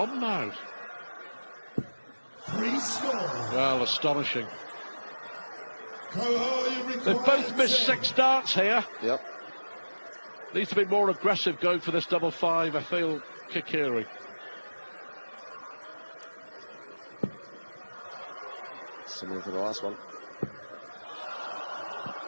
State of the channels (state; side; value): inverted; both; correlation -1.00